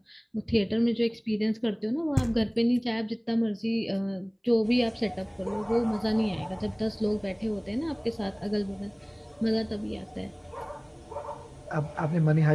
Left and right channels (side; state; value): both; identical; correlation 1.00